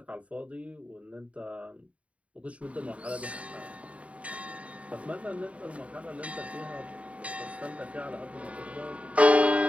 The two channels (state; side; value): late; left; 0.065 ms